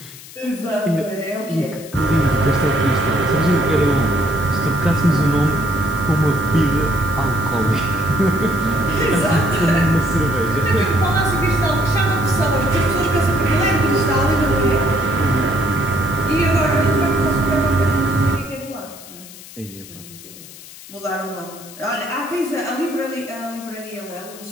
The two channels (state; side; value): noise; left; hiss, 17 dB below the sound